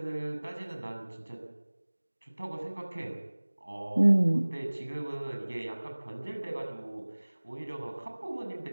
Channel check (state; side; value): inverted; both; correlation -1.00